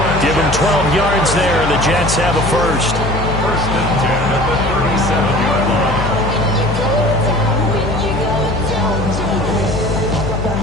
Give him 12 yards there, and the Jets have a first. 1st and 10 at the 37-yard line.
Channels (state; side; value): noise; left; hum, 6 dB below the sound